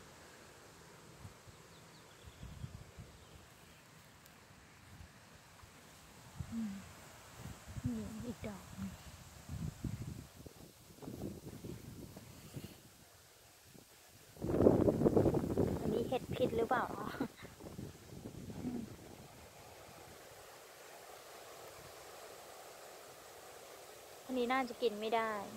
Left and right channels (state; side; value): identical; both; correlation 1.00